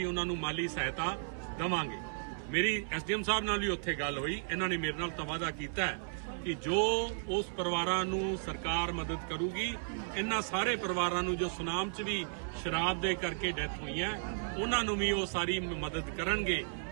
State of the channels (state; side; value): silent; left; 55 dB below the other